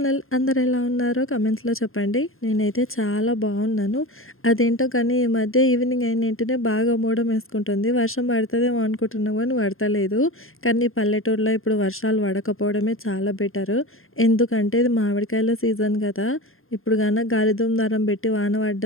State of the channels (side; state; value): right; late; 0.61 ms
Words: అందరు ఎలా ఉన్నారో కమెంట్స్లో చెప్పండి. నేనైతే చాలా బాగున్నాను. అదేంటో కానీ ఈ మధ్య ఈవినింగ్ అయిన వెంటనే బాగా మూడం వేసుకుంటుంది. వర్షం పడుతుందేమో అనుకుంటున్నాం కానీ పడతలేదు. కానీ పల్లెటూరులో ఇప్పుడు వర్షాలు పడకపోవడమే చాలా బెటర్. ఎందుకంటే ఇది మామిడికాయల సీజన్ కదా. ఇప్పుడు కన్నా గాలిదుమ్ దారం పెట్టి వాన